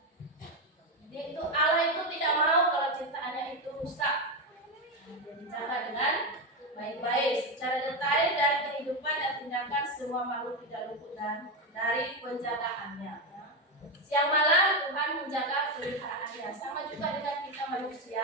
Itu Allah itu tidak mau kalau ciptaannya itu rusak. Dia dijaga dengan baik-baik, secara detail dan kehidupan dan tindakan semua makhluk tidak luput dan dari penjagaannya. Ya. Siang malam Tuhan menjaga peliharaannya. Sama juga dengan kita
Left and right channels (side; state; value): both; normal; correlation 0.11